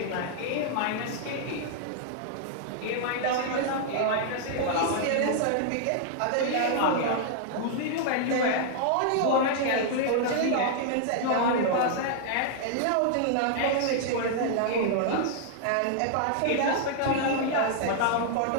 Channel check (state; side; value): different; both; correlation -0.01